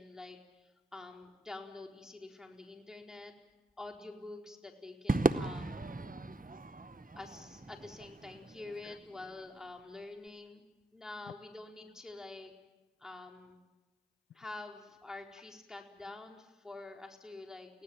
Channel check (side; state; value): both; normal; correlation 0.75